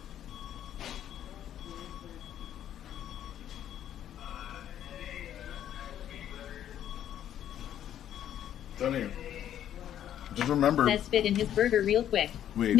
Done here. Just remember. Says spit in his burger real quick. Wait.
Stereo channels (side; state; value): right; quieter; 10.7 dB